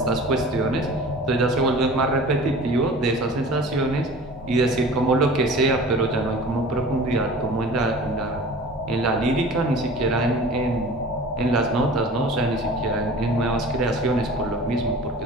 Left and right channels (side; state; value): both; normal; correlation 0.41